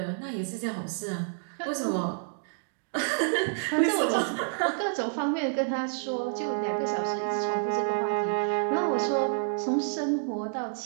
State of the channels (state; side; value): silent; left; digital silence